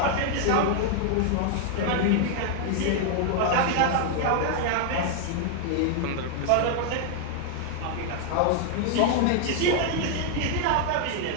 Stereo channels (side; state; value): both; different; correlation 0.00